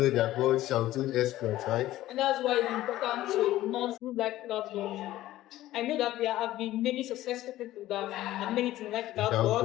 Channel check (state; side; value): quieter; right; 15.1 dB